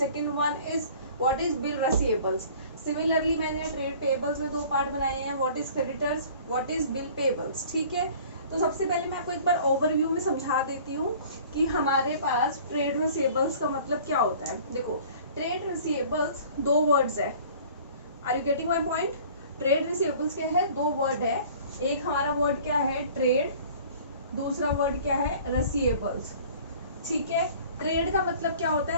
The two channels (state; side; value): inverted; both; correlation -0.49